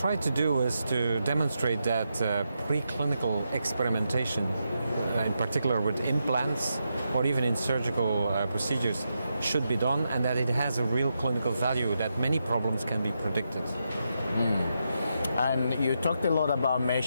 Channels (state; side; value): inverted; both; correlation -0.85